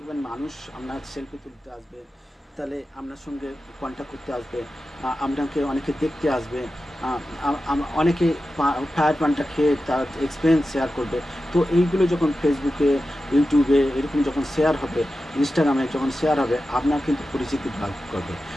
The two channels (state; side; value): normal; both; correlation 0.92